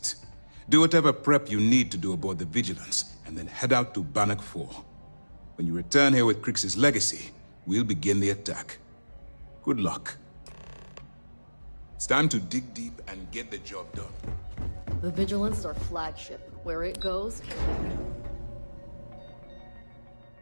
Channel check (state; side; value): inverted; both; correlation -1.00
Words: Do whatever prep you need to do aboard the Vigilance, and then head out to Bannock 4. When you return here with Crix's legacy, we'll begin the attack. Good luck. It's time to dig deep and get the job done. The Vigilance is our flagship. Where it goes,